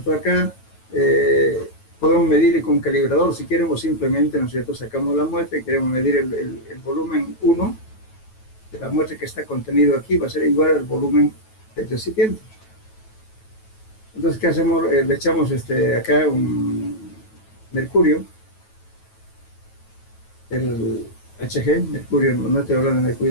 Acá podemos medir con calibrador si queremos, simplemente, ¿no es cierto? Sacamos la muestra y queremos medir el volumen 1 de la muestra que está contenido aquí, va a ser igual al volumen del recipiente. Entonces, ¿qué hacemos? Le echamos acá un mercurio, el Hg, mercurio, no estoy hablando de mercurio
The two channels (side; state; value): right; late; 9.2 ms